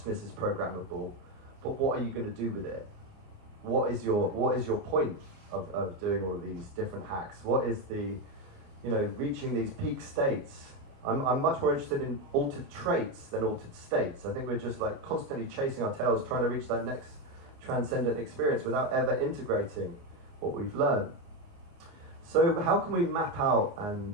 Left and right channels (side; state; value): left; late; 29 ms